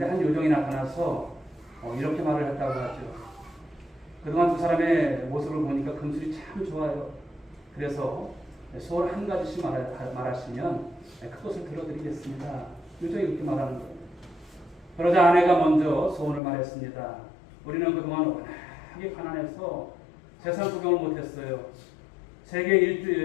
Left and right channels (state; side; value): drops out; right; at 16.4 s